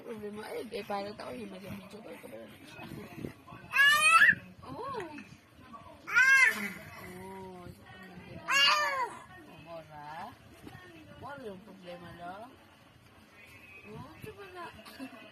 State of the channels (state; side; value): identical; both; correlation 1.00